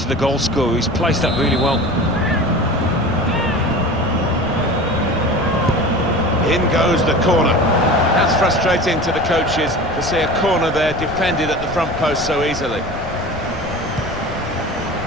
the goal scorer. He's placed that really well. In goes the corner. That's frustrating to the coaches to see a corner there defended at the front post so easily.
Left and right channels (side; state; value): left; noise; rumble, 12 dB below the sound